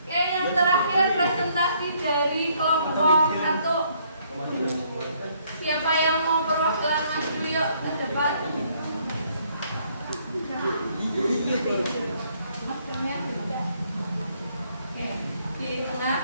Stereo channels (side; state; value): both; inverted; correlation -0.67